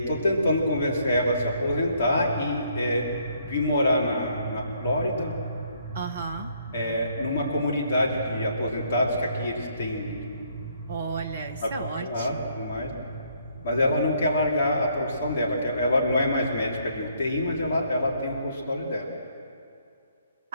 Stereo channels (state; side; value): inverted; both; correlation -0.68